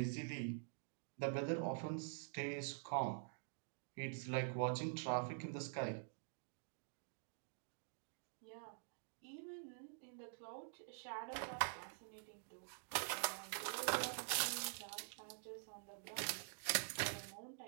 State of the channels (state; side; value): silent; left; digital silence